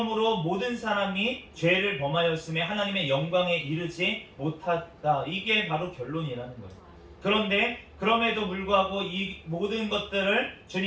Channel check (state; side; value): identical; both; correlation 1.00